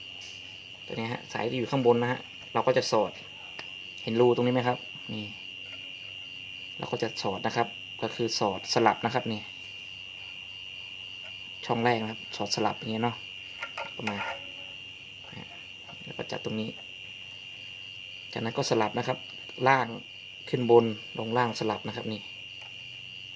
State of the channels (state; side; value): identical; both; correlation 1.00